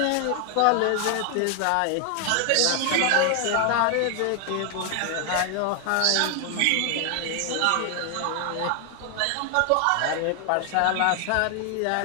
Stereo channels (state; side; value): different; both; correlation 0.00